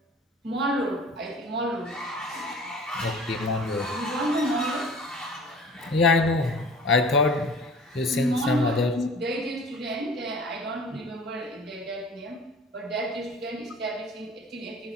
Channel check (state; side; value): normal; both; correlation 0.44